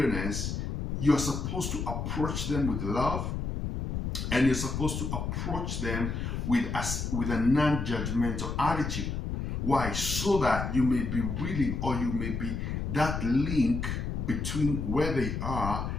you're supposed to approach them with love, and you're supposed to approach them with a non-judgmental attitude. Why? So that you may be willing, or you may be that link between where they are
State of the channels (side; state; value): left; noise; rumble, 3 dB below the sound